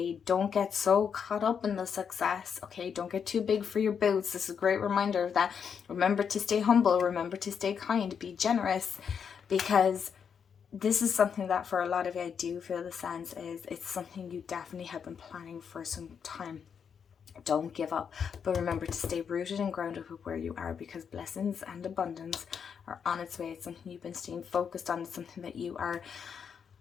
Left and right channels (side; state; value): right; quieter; 7.0 dB